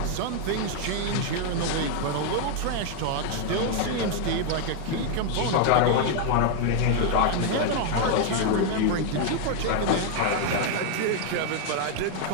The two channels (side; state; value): both; different; correlation 0.00